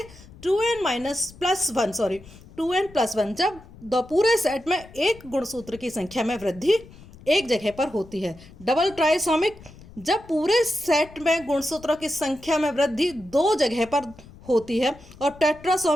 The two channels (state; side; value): noise; left; rumble, 21 dB below the sound